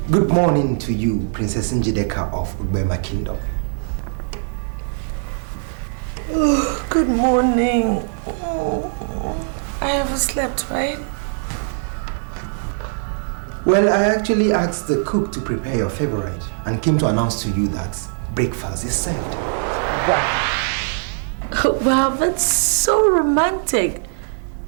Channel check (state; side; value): silent; left; 65 dB below the other